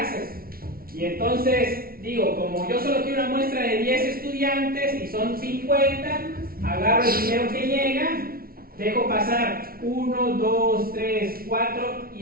Y entonces digo, como yo solo quiero una muestra de 10 estudiantes y son 50, agarro el primero que llega, dejo pasar 1, 2, 3, 4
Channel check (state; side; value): late; left; 0.43 ms